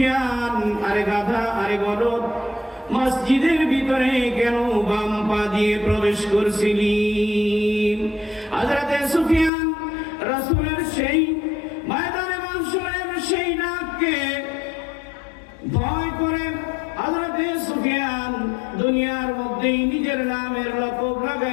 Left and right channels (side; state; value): right; drops out; at 9.5 s